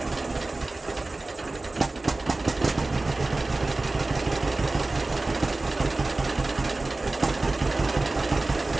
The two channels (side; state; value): left; quieter; 3.1 dB